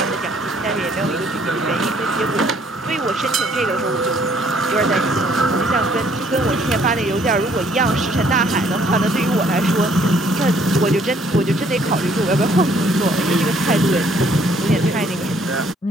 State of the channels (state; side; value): normal; both; correlation 0.63